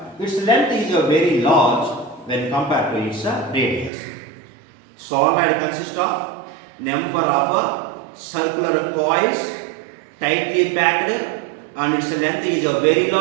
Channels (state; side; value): drops out; left; at 3.9 s